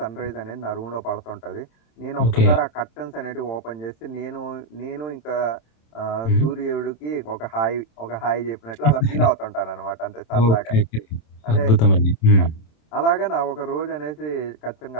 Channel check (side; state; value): right; late; 27 ms